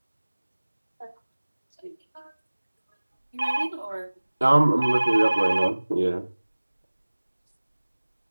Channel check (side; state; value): both; inverted; correlation -1.00